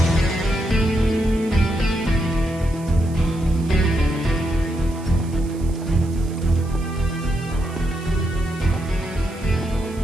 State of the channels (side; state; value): right; noise; hiss, 22 dB below the sound